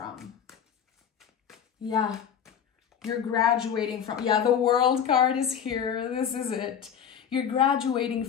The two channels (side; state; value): right; quieter; 8.2 dB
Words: Yeah. You're graduating from, yeah, the World card is here. This is it. You're graduating